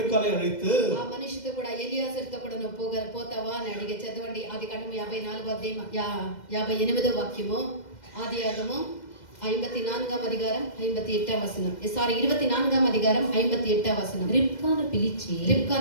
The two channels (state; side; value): late; right; 2.0 ms